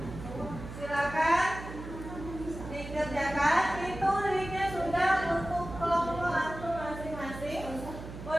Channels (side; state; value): right; noise; hum, 11 dB below the sound